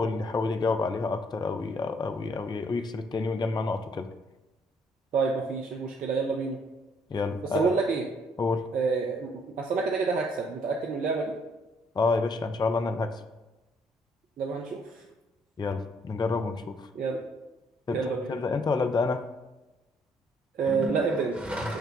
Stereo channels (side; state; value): both; normal; correlation 0.67